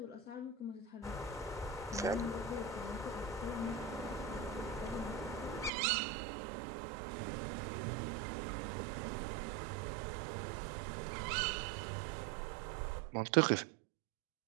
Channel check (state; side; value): drops out; left; at 5.7 s